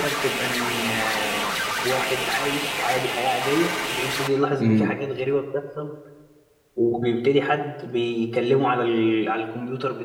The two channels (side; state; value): both; identical; correlation 1.00